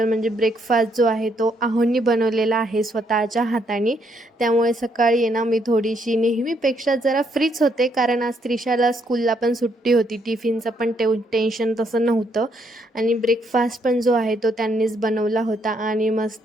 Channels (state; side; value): normal; both; correlation 0.73